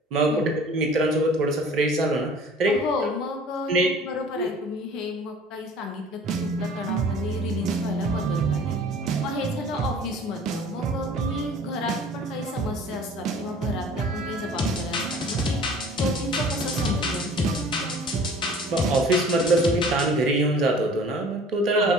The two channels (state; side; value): normal; both; correlation 0.48